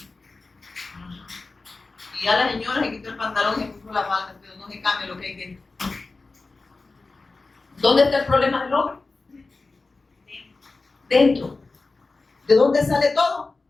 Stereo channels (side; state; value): right; quieter; 3.7 dB